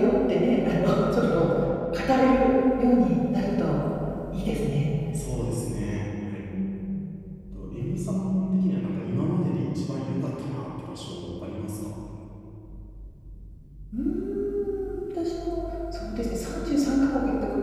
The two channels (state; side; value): identical; both; correlation 1.00